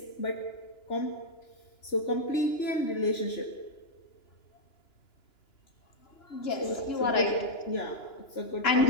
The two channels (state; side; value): late; right; 2.9 ms